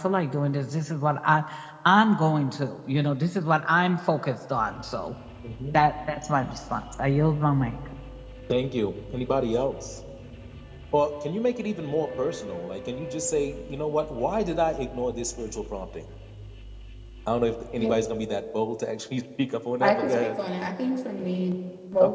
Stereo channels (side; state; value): both; identical; correlation 1.00